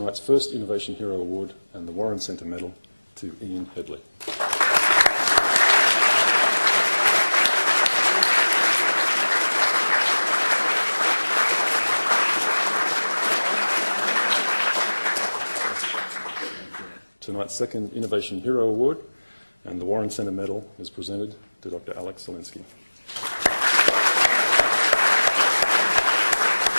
first Innovation Hero Award and the Warren Centre Medal to Ian Headley. Tonight's second Innovation Hero Award and the Warren Centre Medal is presented to Dr. Alex Zelinsky.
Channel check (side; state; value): both; inverted; correlation -1.00